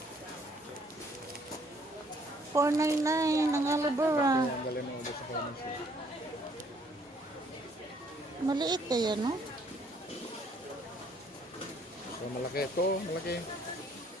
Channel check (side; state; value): both; normal; correlation 0.64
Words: $4.99 ang aloe vera. Ang galing mo ulit sa pharmacy. Maliit kaya, no? So, malaki ito, malaki.